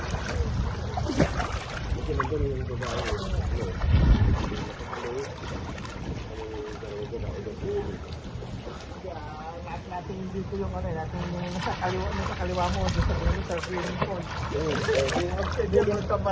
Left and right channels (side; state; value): both; identical; correlation 1.00